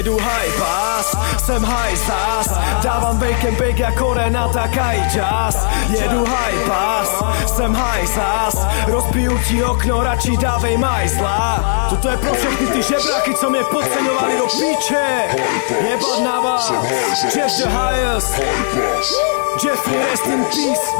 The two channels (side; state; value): right; silent; digital silence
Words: high pass, jsem high zas. Dávám bake jako Renata Kajčas. Jedu high pass, jsem high zas. Rozbiju ti okno, radši dávej majzla. Toto je pro všechny ty žebráky, co mě podceňovali do píče. Jebat na vás, Jeff the highest, Jeffrey rest in peace.